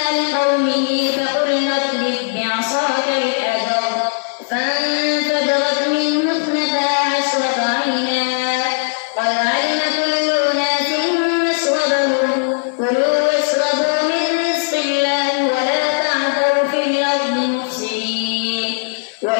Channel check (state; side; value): silent; right; 56 dB below the other